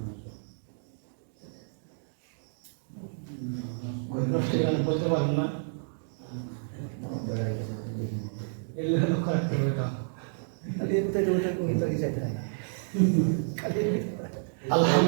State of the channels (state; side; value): silent; left; digital silence